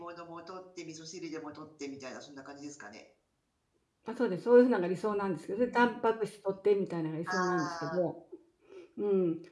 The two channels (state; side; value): identical; both; correlation 1.00